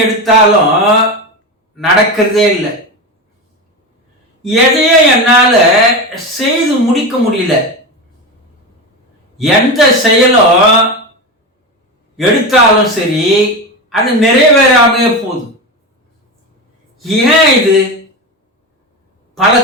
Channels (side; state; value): both; normal; correlation 0.20